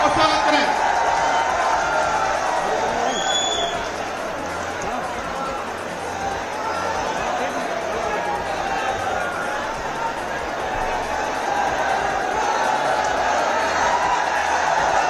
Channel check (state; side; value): identical; both; correlation 1.00